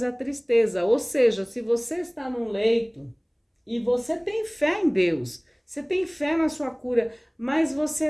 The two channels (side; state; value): both; identical; correlation 1.00